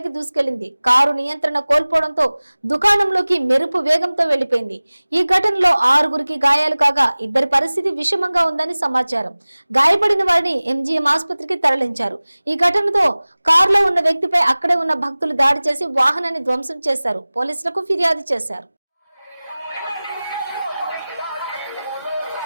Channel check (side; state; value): both; inverted; correlation -0.99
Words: దూసుకెళ్లింది. కారు నియంత్రణ కోల్పోవడంతో దుకాణంలోకి మెరుపు వేగంతో వెళ్లిపోయింది. ఈ ఘటనలో 6గురికి గాయాలు కాగా 2 పరిస్థితి విషమంగా ఉందని సమాచారం. గాయపడిన వారిని ఎంజీఎం ఆసుపత్రికి తరలించారు. ఈ ఘటనతో కారులో ఉన్న వ్యక్తిపై అక్కడే ఉన్న భక్తులు దాడి చేసి వాహనాన్ని ధ్వంసం చేశారు. పోలీసులకు ఫిర్యాదు చేశారు.